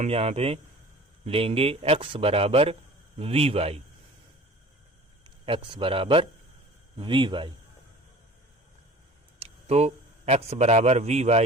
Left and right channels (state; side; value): normal; both; correlation 0.43